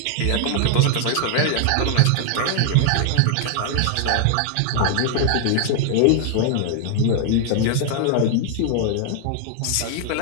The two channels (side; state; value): both; different; correlation 0.00